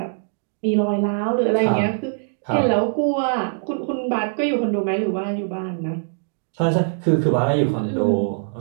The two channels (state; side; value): silent; left; digital silence